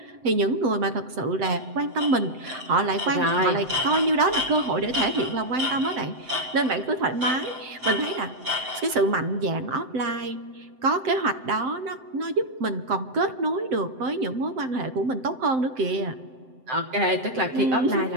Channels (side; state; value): left; late; 7.7 ms